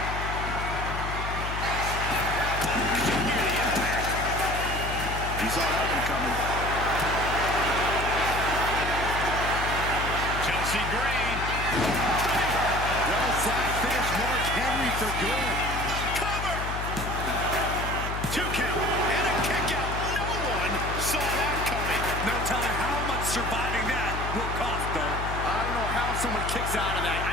You saw that one coming. Chelsea Green. Well, side finish Mark Henry for good. Cover. 2 count. And a kick out. No one saw that coming. No telling how much surviving that will cost, though. I don't know how someone kicks out of that.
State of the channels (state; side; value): noise; left; hum, 5 dB below the sound